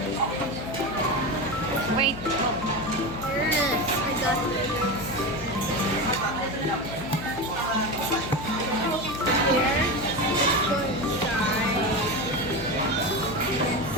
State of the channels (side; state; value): left; noise; hum, 10 dB below the sound